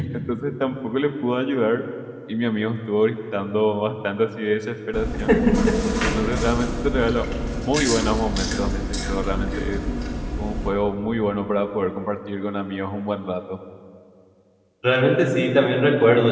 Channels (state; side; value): identical; both; correlation 1.00